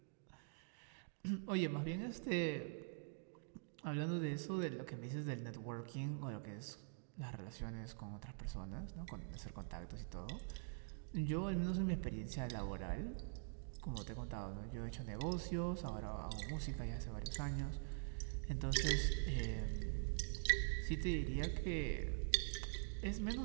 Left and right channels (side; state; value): left; silent; digital silence